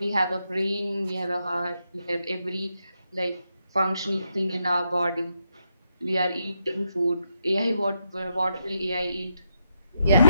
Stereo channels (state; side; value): inverted; both; correlation -0.82